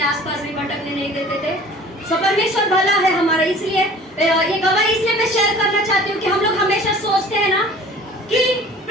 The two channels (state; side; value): normal; both; correlation 0.46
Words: आसपास भी भटकने नहीं देते थे। सो परमेश्वर भला है हमारा। इसलिए ये गवाही इसलिए मैं शेयर करना चाहती हूँ कि हम लोग हमेशा सोचते हैं ना कि